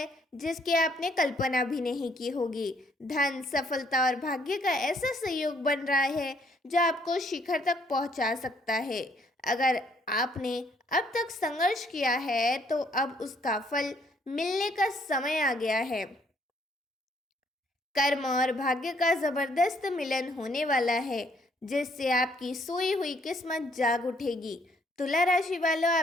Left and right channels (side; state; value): both; normal; correlation 0.67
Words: जिसकी आपने कल्पना भी नहीं की होगी। धन, सफलता और भाग्य का ऐसा संयोग बन रहा है जो आपको शिखर तक पहुंचा सकता है। अगर आपने अब तक संघर्ष किया है तो अब उसका फल मिलने का समय आ गया है। कर्म और भाग्य का जबरदस्त मिलन होने वाला है जिससे आपकी सोई हुई किस्मत जाग उठेगी। तुला राशि वालों,